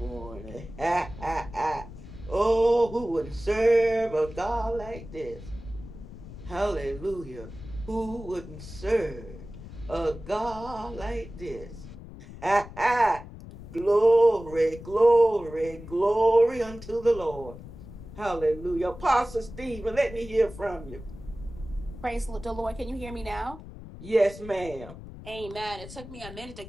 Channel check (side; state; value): left; noise; rumble, 14 dB below the sound